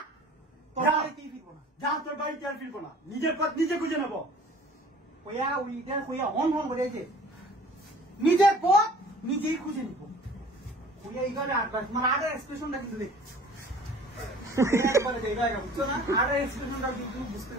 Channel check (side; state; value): both; normal; correlation 0.48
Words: যা, তোর বাড়িতে আর ফিরবো না। নিজের পথ নিজে খুঁজে নেবো। নিজের পথ নিজেই খুঁজে নিব। এইখানে মানে আগে এক্সপ্রেশনটা কিন্তু দেখ, বুঝছো না? আগে এক্সপ্রেশনটা কিন্তু বুঝতে